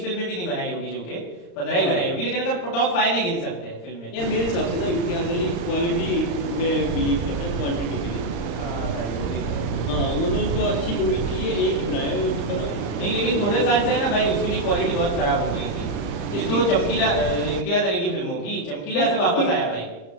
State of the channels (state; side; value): late; right; 35 ms